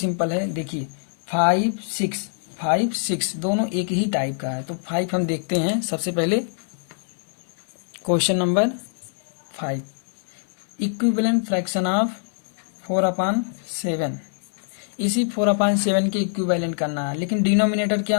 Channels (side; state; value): right; silent; 63 dB below the other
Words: है। देखिए 5 6 दोनों एक ही टाइप का है, तो 5 हम देखते हैं सबसे पहले। Question number 5, equivalent fraction of 4/7। इसी 4/7 के इक्विवेलेंट करना है, लेकिन डिनोमिनेटर